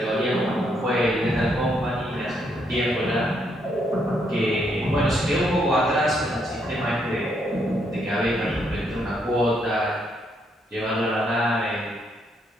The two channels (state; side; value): normal; both; correlation 0.75